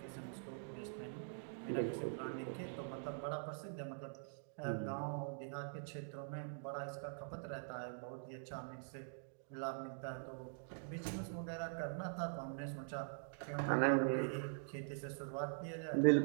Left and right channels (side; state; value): left; silent; digital silence